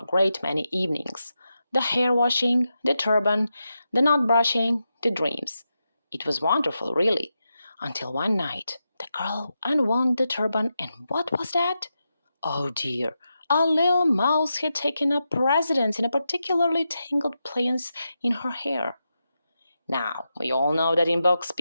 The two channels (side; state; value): both; inverted; correlation -0.88